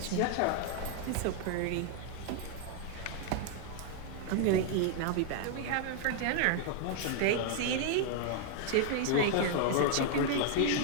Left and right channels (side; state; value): both; different; correlation 0.00